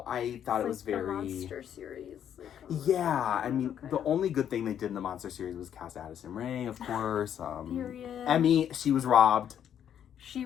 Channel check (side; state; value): right; quieter; 9.5 dB